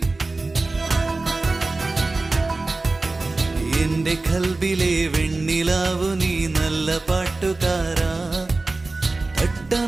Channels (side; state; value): left; quieter; 3.3 dB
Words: എന്റെ കൽബിലെ വെണ്ണിലാവു നീ നല്ല പാട്ടുകാരാ.